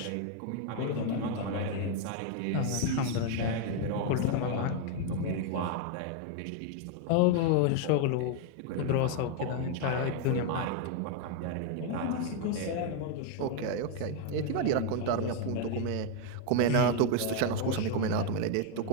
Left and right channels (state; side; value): different; both; correlation 0.00